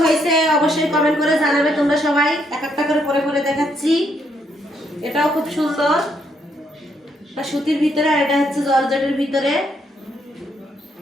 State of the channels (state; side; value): normal; both; correlation 0.73